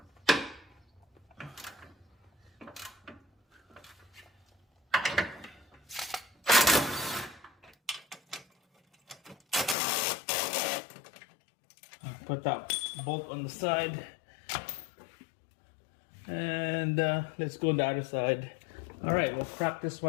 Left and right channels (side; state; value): right; drops out; at 9.8 s